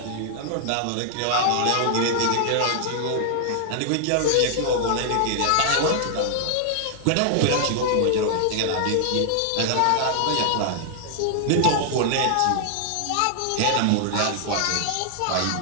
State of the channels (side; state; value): both; different; correlation 0.00